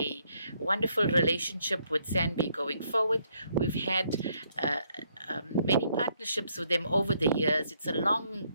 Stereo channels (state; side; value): inverted; both; correlation -0.71